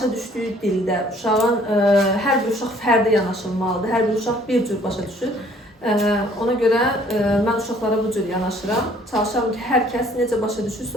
düşdüyü dildə, uşağın hər bir uşaq fərdi yanaşılmalıdır. Hər bir uşaq bir cür başa düşür. Ona görə mən uşaqlara bu cür yanaşıram. Çalışıram ki, hər kəs necə başa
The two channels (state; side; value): normal; both; correlation 0.58